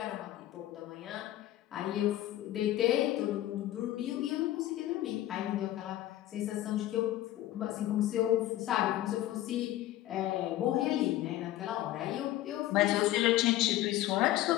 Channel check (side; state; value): right; quieter; 14.4 dB